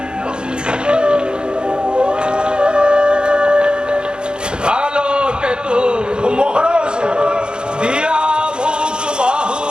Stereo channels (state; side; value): late; left; 0.050 ms